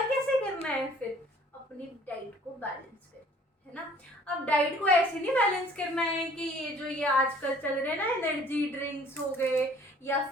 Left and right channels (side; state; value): both; normal; correlation 0.54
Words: कैसे करना है? फिर अपनी डाइट को बैलेंस कर, है ना। अब डाइट को ऐसे नहीं बैलेंस करना है कि ये आजकल चल रहे हैं ना, एनर्जी ड्रिंक्स हो गए या